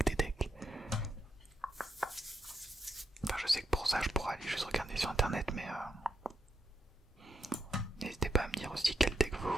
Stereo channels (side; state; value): both; normal; correlation 0.82